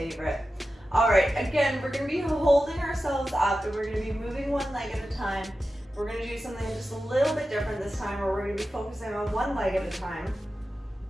All right, again, we're gonna be holding ourselves up and we're gonna be moving one leg at a time. We're gonna do something just a little bit different this time, where we're gonna be focusing on one leg at a time.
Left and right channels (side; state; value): both; normal; correlation 0.93